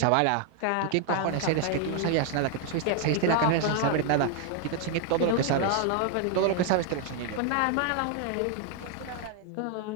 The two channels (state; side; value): different; both; correlation 0.00